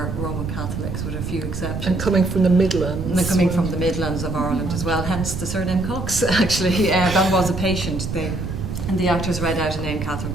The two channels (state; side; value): noise; right; rumble, 6 dB below the sound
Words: Roman Catholics, with a few exceptions. And coming from the Midlands. And they're coming from the Midlands of Ireland as well, hence the surname Cox, actually. That was a patient. And the actors read out a name, Catherine